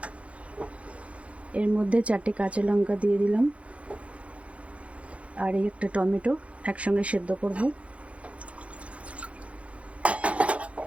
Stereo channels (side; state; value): left; late; 0.063 ms